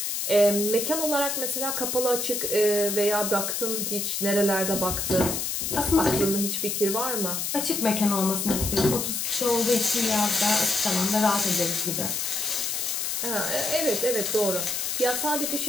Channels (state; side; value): noise; left; hiss, 1 dB below the sound